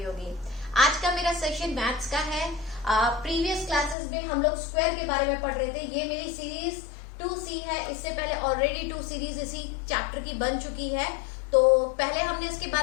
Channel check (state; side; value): drops out; right; at 4.0 s